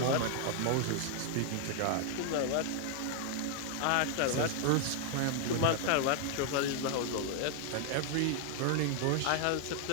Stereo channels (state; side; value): different; both; correlation 0.00